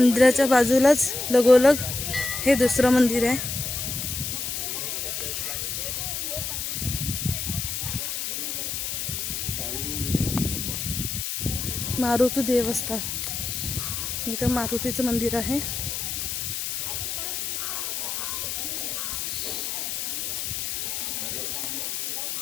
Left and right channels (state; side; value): noise; left; hiss, 3 dB below the sound